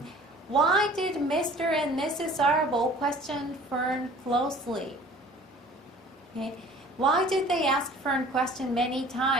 Why did Mr. and Mrs. Arable question Fern closely? Okay. Why did they ask Fern question many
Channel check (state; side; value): normal; both; correlation 0.48